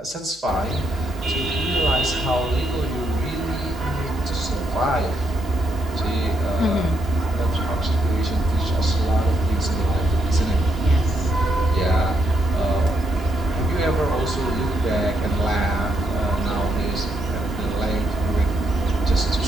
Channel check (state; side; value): normal; both; correlation 0.77